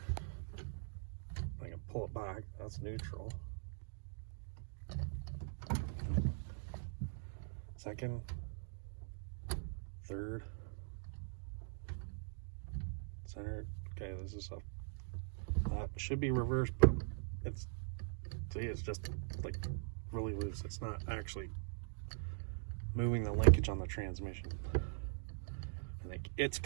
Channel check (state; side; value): silent; left; digital silence